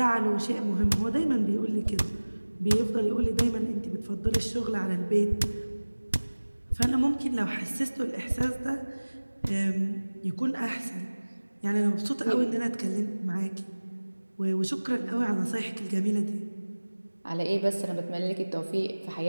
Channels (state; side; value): inverted; both; correlation -1.00